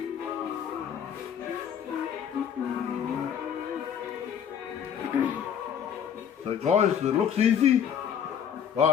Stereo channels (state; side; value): quieter; right; 8.3 dB